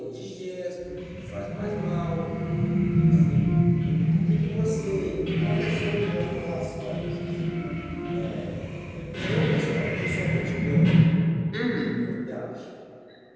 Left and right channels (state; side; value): identical; both; correlation 1.00